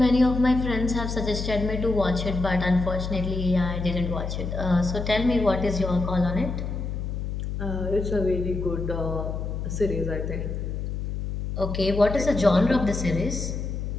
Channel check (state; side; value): noise; left; hum, 4 dB below the sound